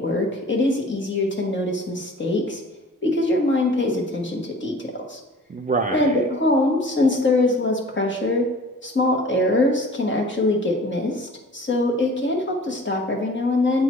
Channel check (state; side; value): normal; both; correlation 0.46